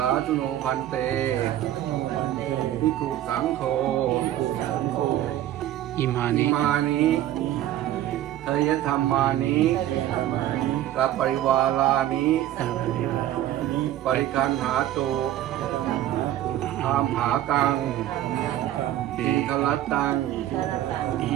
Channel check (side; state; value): left; quieter; 13.0 dB